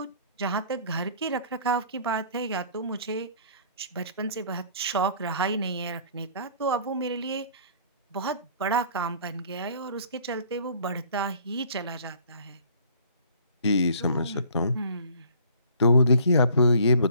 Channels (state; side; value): inverted; both; correlation -0.54